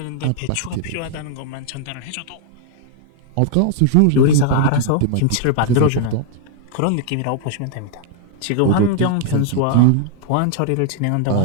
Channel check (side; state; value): both; different; correlation 0.00